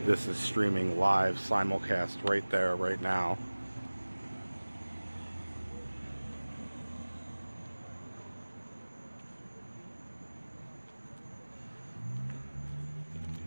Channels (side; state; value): both; inverted; correlation -1.00